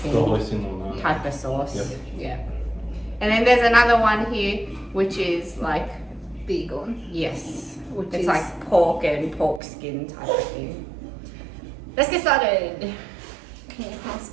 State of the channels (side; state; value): left; drops out; at 9.6 s